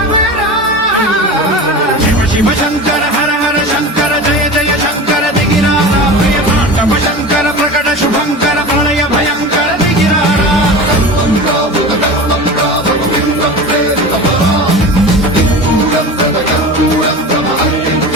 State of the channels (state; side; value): normal; both; correlation 0.31